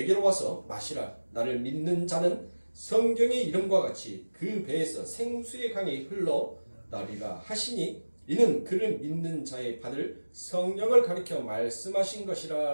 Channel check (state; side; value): inverted; both; correlation -1.00